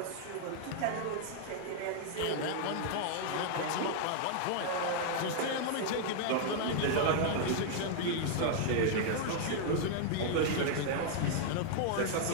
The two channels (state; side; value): different; both; correlation 0.00